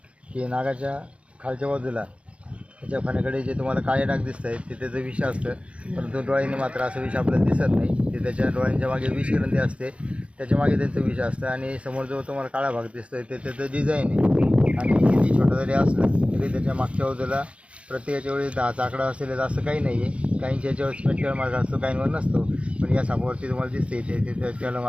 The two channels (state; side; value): late; left; 0.061 ms